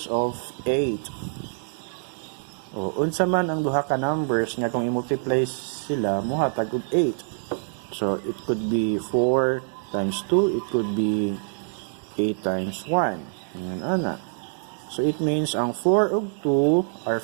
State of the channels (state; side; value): silent; left; digital silence